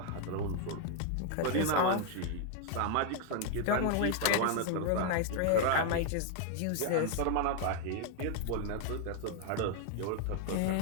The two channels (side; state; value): both; different; correlation 0.00